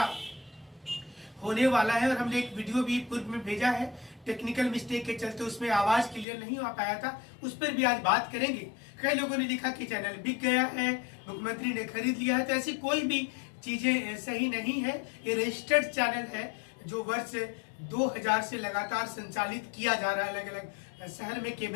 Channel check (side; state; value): right; drops out; at 6.2 s